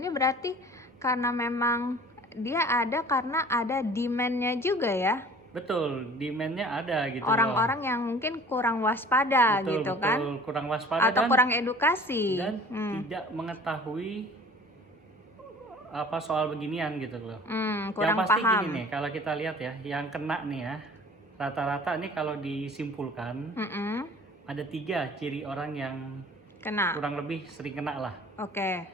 berarti karena memang dia ada karena ada demand-nya juga ya. Betul, demand-nya ada gitu. Orang-orang yang mungkin kurang waspada gitu kan. Kurang waspada atau kurang edukasi dan tidak mengetahui apa soal beginian gitu loh. Kurang yang pasti paham. Gini nih, kalau kita lihat ya, yang kena nih ya, rata-rata nih kalau disimpulkan ada 3 ciri orang yang kena, kurang lebih sering kena lah. Oke.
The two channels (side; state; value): both; normal; correlation 0.47